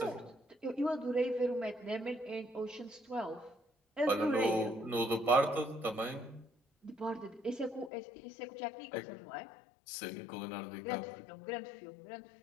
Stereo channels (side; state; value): right; drops out; at 7.9 s